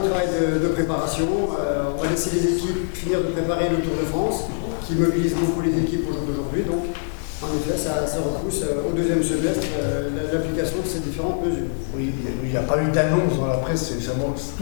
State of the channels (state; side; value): silent; right; digital silence